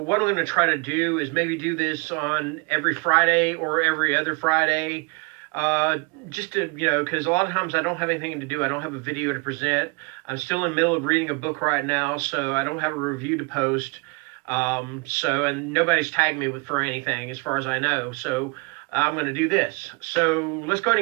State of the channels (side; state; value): left; quieter; 30.4 dB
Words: I'm going to try to do is maybe do this on every Friday or every other Friday. Just to, because a lot of times I don't have anything to do. I don't have a video to present. I'm still in the middle of reading a book right now, so I don't have a review to post. And nobody's tagged me for anything as far as I know. So I'm going to do this. So let's go ahead